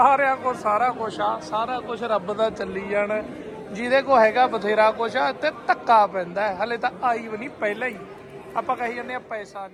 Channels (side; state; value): both; identical; correlation 1.00